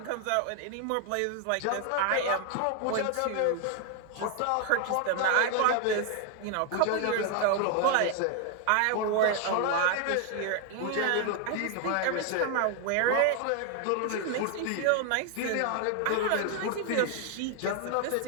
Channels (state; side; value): different; both; correlation 0.00